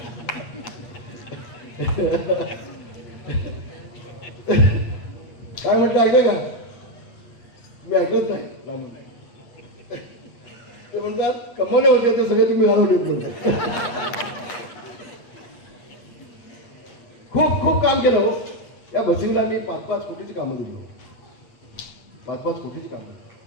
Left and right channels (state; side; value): late; right; 8.4 ms